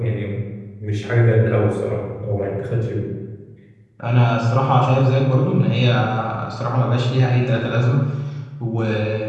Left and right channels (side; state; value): both; identical; correlation 1.00